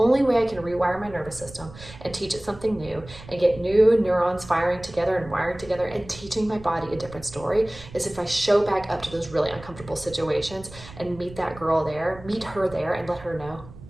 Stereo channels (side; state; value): right; noise; rumble, 17 dB below the sound